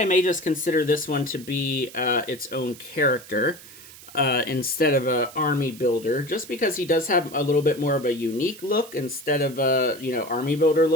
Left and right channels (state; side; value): noise; right; hiss, 18 dB below the sound